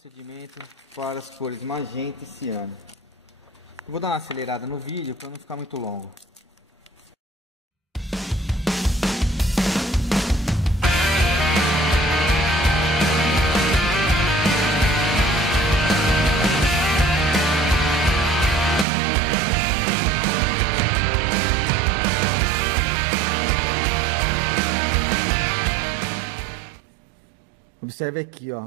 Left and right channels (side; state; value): left; drops out; at 18.9 s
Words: para as cores magenta e ciano. Eu vou dar uma acelerada no vídeo para não ficar muito longo. Observe aqui,